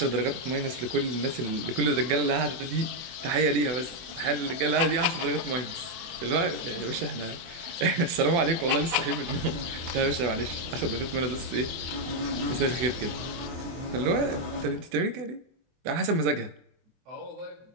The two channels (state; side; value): late; left; 24 ms